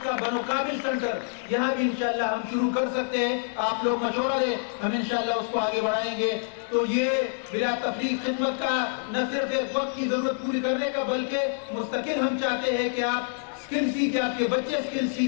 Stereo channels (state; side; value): silent; right; digital silence